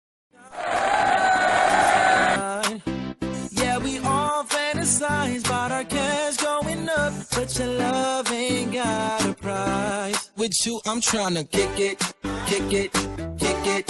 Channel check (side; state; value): both; identical; correlation 1.00